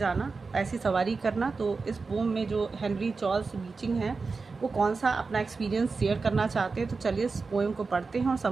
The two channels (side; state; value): left; quieter; 4.3 dB